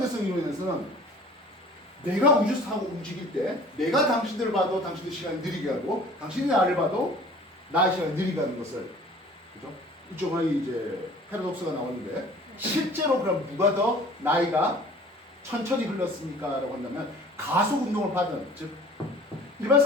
이론에서는 내가 우주선 타고 움직일 때 내가 당신들을 봐도 당신들 시간이 느리게 하고 당신이 나를 봐도 나의 시간이 느리게 하는 것을, 그죠? 이쪽은 이제 패러독스가 나오는데 실제로 그럼 누가 더 나이가 천천히 흘렀습니까? 라고 한다면 가속 운동을 받은, 즉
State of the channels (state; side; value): normal; both; correlation 0.48